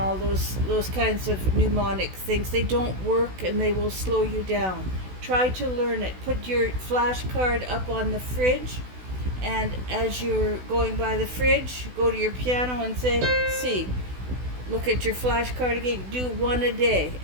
those kinds of mnemonic things. They don't work and they will slow you down. Try to learn it. Put your flashcard up on the fridge, and as you're going by the fridge, go to your piano and say C. Look at your flashcard again. Do 1 a day,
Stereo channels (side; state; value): left; late; 16 ms